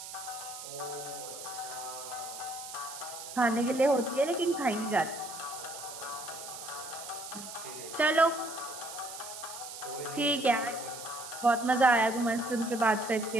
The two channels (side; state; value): right; noise; hiss, 11 dB below the sound